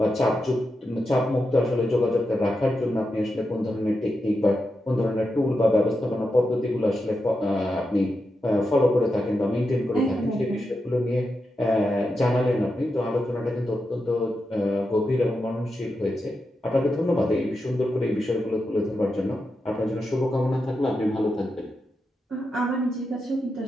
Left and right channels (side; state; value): both; normal; correlation 0.87